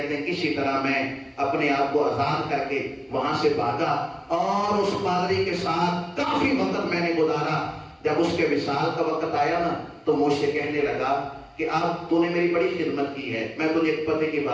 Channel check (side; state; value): both; identical; correlation 1.00